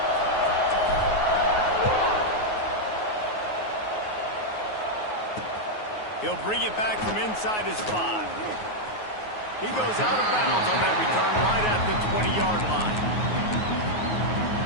He'll bring it back from inside his 5. He goes out of bounds on that return right at the 20-yard line.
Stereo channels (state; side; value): late; right; 9.4 ms